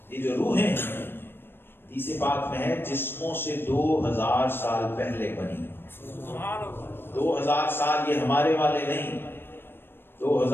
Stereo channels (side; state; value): right; late; 0.10 ms